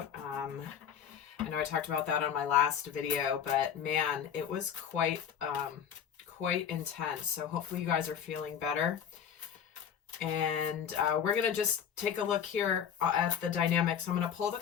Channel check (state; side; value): quieter; right; 8.4 dB